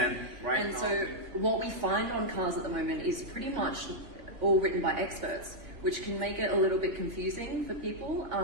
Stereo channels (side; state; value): left; late; 3.5 ms